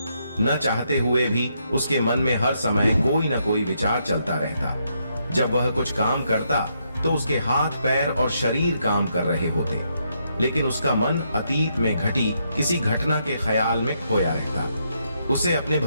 न चाहते हुए भी उसके मन में हर समय कोई न कोई विचार चलता रहता। जब वह कुछ काम करता तो उसके हाथ, पैर और शरीर काम कर रहे होते, लेकिन उसका मन अतीत में घटी किसी घटना के ख्याल में खोया रहता। उसे अपने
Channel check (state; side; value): inverted; both; correlation -0.77